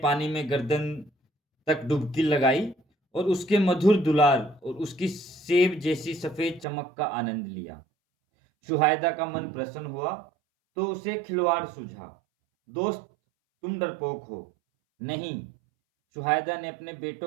पानी में गर्दन तक डुबकी लगाई और उसके मधुर दुलार और उसकी सेब जैसी सफेद चमक का आनंद लिया। शुहायदा का मन प्रसन्न हुआ तो उसे खिलवाड़ सूझा। दोस्त, तुम डरपोक हो। नहीं। शुहायदा ने अपने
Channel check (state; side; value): drops out; left; at 6.7 s